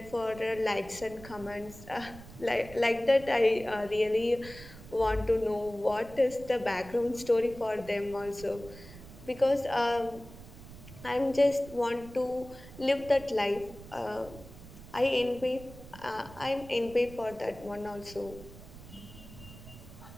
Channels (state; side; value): noise; right; rumble, 17 dB below the sound